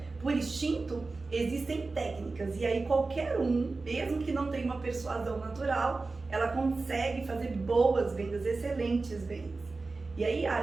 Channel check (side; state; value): left; quieter; 3.7 dB